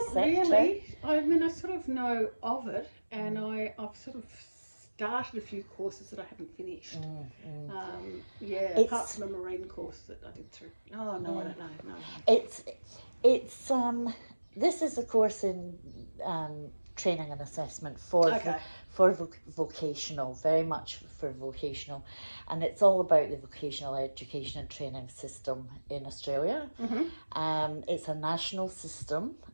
sector? really. I mean, I sort of know of it, and Mm, I've sort of started a few courses that I haven't finished. mm, mm. Yeah, apart It's from a marine course that I did through. Oh no, I yeah, don't know. No, no. it's it's this is a course in training and assessment for Okay. vocational, very much for vocational, and it's all about the vocational education and training system in Australia. Mhm. It's a national system,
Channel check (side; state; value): both; inverted; correlation -1.00